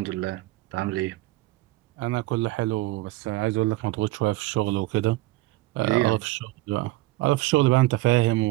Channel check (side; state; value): left; quieter; 18.6 dB